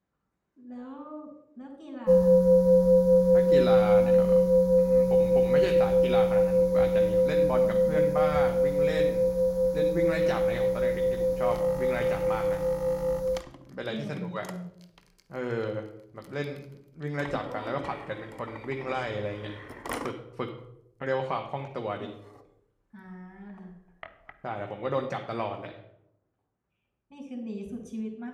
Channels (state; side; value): identical; both; correlation 1.00